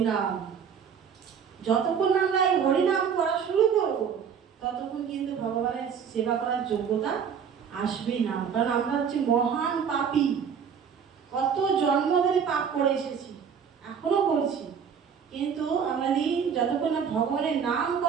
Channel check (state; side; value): quieter; left; 7.2 dB